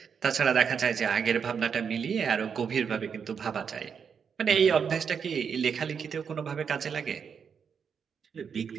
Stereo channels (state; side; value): quieter; left; 6.8 dB